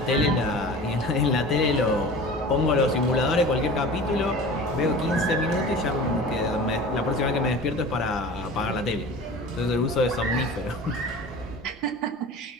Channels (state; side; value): normal; both; correlation 0.38